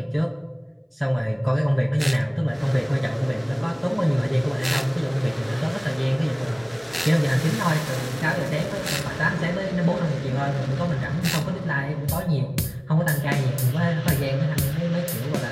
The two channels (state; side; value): identical; both; correlation 1.00